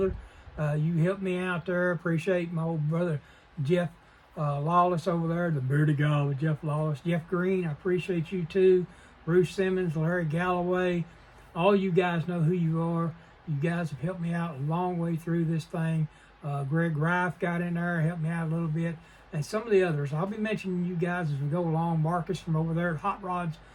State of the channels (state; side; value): identical; both; correlation 1.00